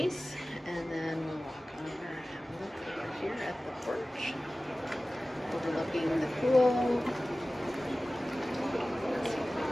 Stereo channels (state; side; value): normal; both; correlation 0.97